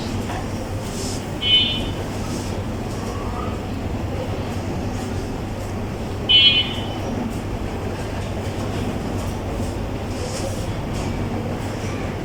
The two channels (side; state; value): both; identical; correlation 1.00